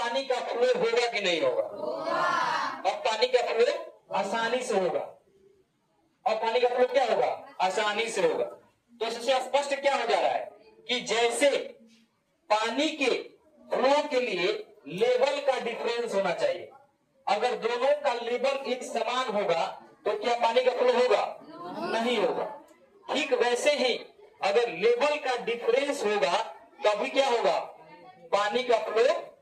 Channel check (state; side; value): identical; both; correlation 1.00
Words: का फ्लो होगा कि नहीं होगा? अब पानी का फ्लो आसानी से होगा। और पानी का फ्लो क्या होगा? आसानी से होगा। तो इससे स्पष्ट क्या हो जा रहा है कि जैसे पानी के फ्लो के लिए लेवल का डिफरेंस होना चाहिए, अगर दोनों का लेवल एक समान होगा तो क्या पानी का फ्लो होगा? नहीं होगा। ठीक वैसे ही अगर लेवल का डिफरेंस होगा तभी क्या होगा? पानी का फ्लो